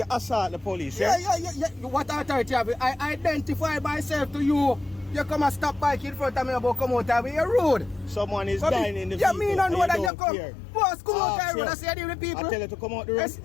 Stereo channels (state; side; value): drops out; right; at 10.1 s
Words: assault the police. Yeah. What authority have you? I identify myself to you. You come and stop bike in front of me about come out of me. You're rude. Someone is dying in the vehicle. Yeah, me don't know that you come. Care. Boss, come out the road. I say the people. I tell you to come out the